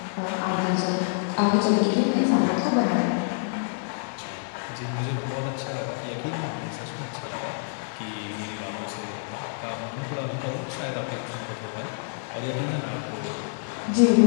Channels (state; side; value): silent; right; 60 dB below the other